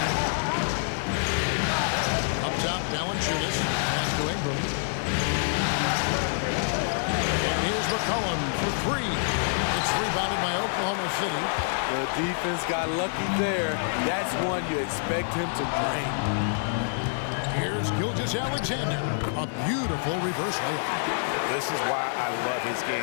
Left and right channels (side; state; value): right; silent; digital silence